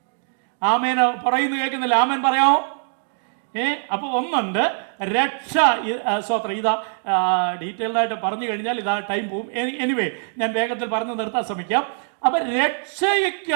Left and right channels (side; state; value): left; silent; digital silence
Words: ആമേൻ പറയുന്നു കേൾക്കുന്നില്ല? ആമേൻ പറയാമോ? അപ്പോൾ ഒന്നുണ്ട് രക്ഷ. സ്വത്രം ഇതാ ഡീറ്റെയിൽഡായിട്ട് പറഞ്ഞു കഴിഞ്ഞാൽ ഇതാ ടൈം പോവും. എനിവേ ഞാൻ വേഗത്തിൽ പറഞ്ഞു നിർത്താൻ ശ്രമിക്കാം. അപ്പം രക്ഷയ്ക്ക്